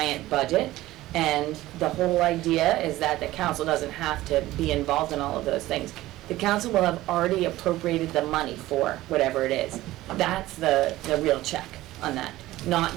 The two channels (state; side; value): quieter; left; 16.5 dB